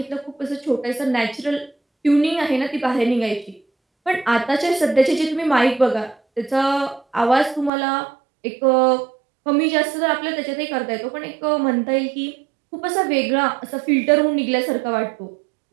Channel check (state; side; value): drops out; left; at 7.7 s